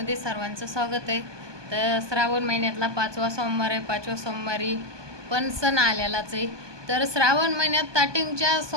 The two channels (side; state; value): left; late; 1.2 ms